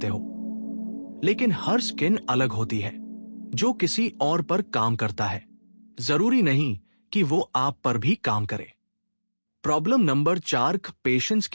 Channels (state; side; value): inverted; both; correlation -1.00